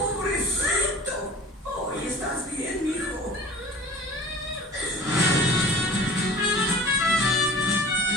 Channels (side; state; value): both; normal; correlation 0.42